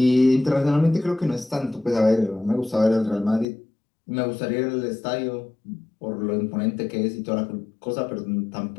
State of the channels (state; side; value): drops out; right; at 3.5 s